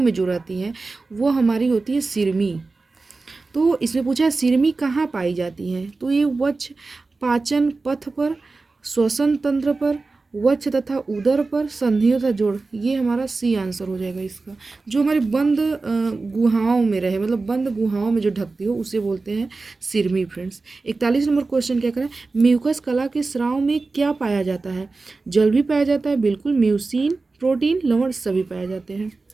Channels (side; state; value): left; quieter; 3.7 dB